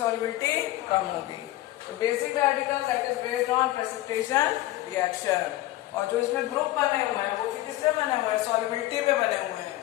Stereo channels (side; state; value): right; quieter; 16.1 dB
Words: कम होगी। तो basic radical that is based on precipitation reaction. और जो इसमें ग्रुप बने हुए हैं वो भी किससे बने हुए हैं? सॉल्युबिलिटी पे बने हुए